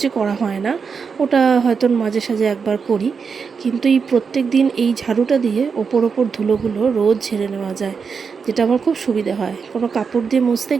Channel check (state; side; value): quieter; left; 5.7 dB